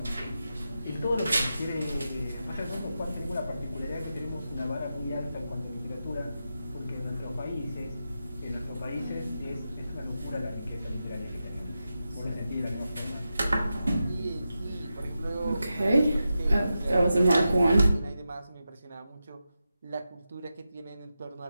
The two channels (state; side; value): inverted; both; correlation -0.90